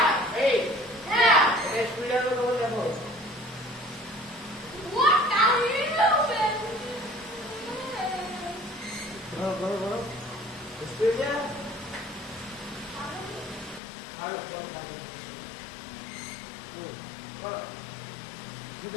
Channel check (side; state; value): right; drops out; at 13.8 s